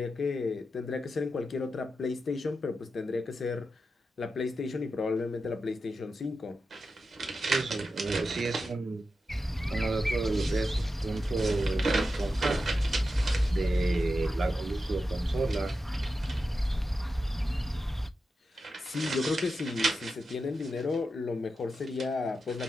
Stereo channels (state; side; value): normal; both; correlation 0.90